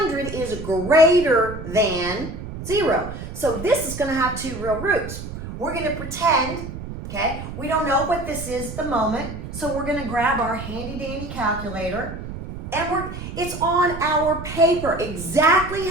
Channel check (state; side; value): noise; right; rumble, 9 dB below the sound